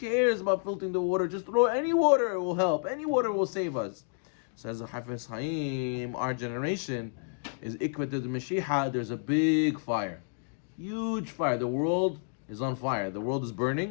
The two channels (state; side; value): silent; right; digital silence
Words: about filtering the water? Just throw any water, it will help. Any water will save us. Says the Hafez Chaim, our generation is Ikvat the Mashiach. There's a big fire. Huge fire. The world is on fire. The world is